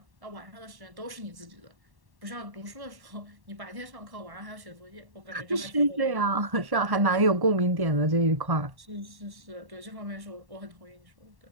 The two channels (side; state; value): left; late; 1.1 ms